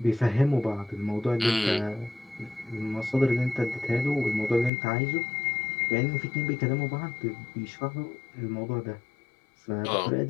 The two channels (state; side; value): drops out; right; at 4.7 s